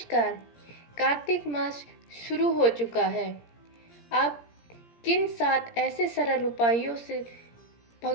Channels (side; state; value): right; late; 17 ms